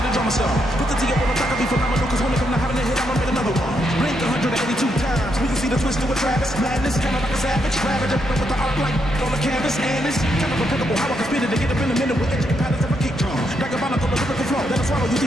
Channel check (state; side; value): normal; both; correlation 0.79